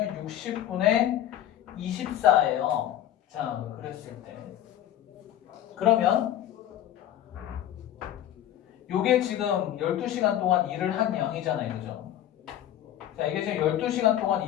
60분의 24예요. 자, 그랬을 때 그러면 요게 지금 12시간 동안 일을 한 양이잖아요. 그죠? 자, 이게 지금 12시간 동안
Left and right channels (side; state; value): right; quieter; 11.7 dB